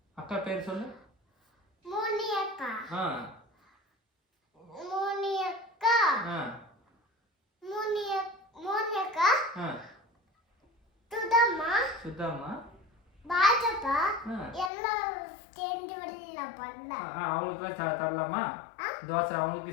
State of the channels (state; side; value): drops out; right; at 14.7 s